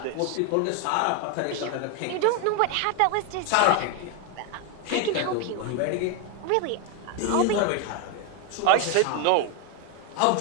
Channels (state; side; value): different; both; correlation 0.01